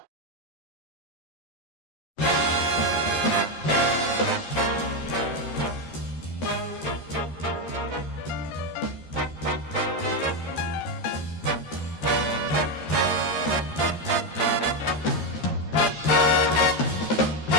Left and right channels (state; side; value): late; right; 13 ms